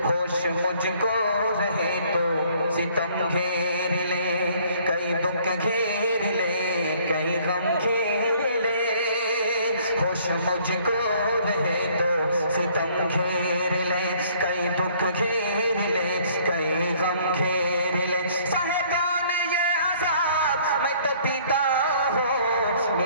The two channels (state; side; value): inverted; both; correlation -0.59